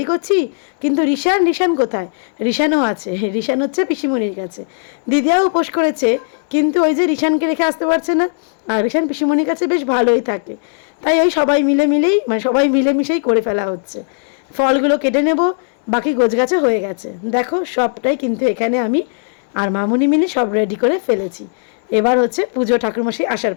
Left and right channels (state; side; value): silent; right; digital silence